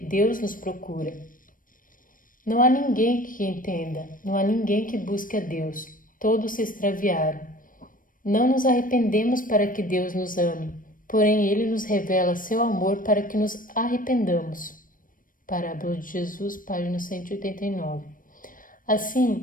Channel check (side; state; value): right; late; 0.40 ms